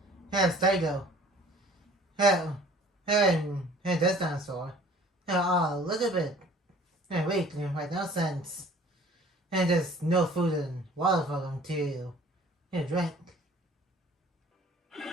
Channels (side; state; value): both; normal; correlation 0.51